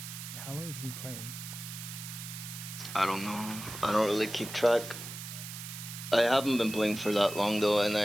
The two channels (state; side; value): noise; right; hiss, 10 dB below the sound